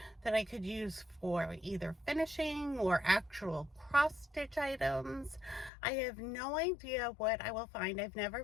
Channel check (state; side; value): drops out; right; at 5.7 s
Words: that I could use for either finishing or actual cross stitch items. I have no idea what I will find. I've never